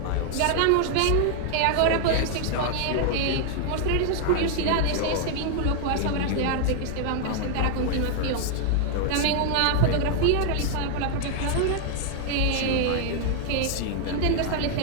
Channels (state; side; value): different; both; correlation 0.00